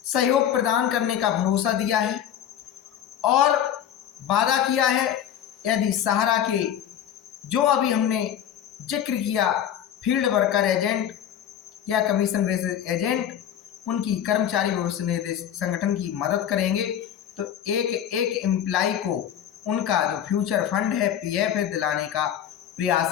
सहयोग प्रदान करने का भरोसा दिया है और वादा किया है, यदि सहारा के जो अभी हमने जिक्र किया फील्ड वर्कर एजेंट या कमीशन बेसिस एजेंट, उनकी कर्मचारी भविष्य निधि संगठन की मदद करेंगे तो एक एक एम्प्लॉय को उनका जो फ्यूचर फंड है, पीएफ है, दिलाने का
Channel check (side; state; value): right; quieter; 10.0 dB